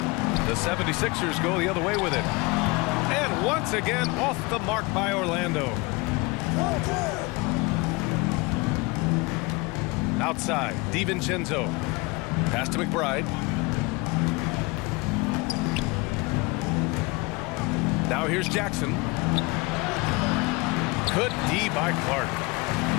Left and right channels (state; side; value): quieter; right; 25.6 dB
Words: The 76ers go the other way with it. And once again, off the mark by Orlando. Outside, DiVincenzo. Pass to McBride. Now here's Jackson. Good D by Clark.